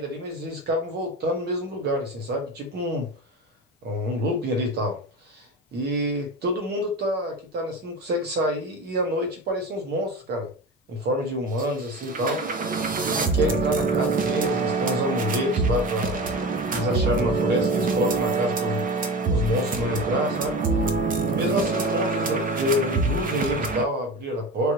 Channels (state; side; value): normal; both; correlation 0.30